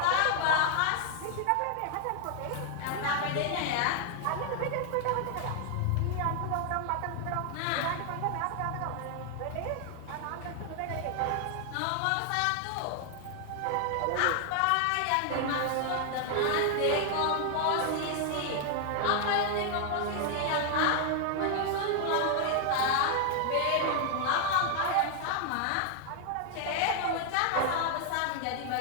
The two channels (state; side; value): different; both; correlation 0.00